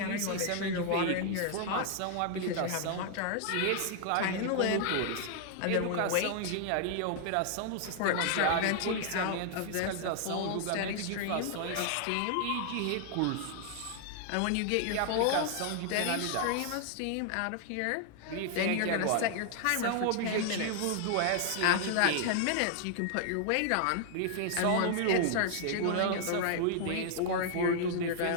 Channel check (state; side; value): different; both; correlation 0.00